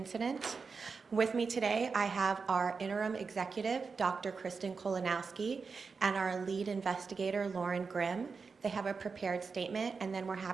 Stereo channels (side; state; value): left; quieter; 5.0 dB